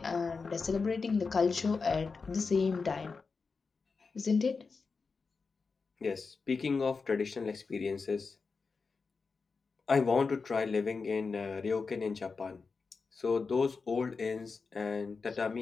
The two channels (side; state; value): right; quieter; 4.7 dB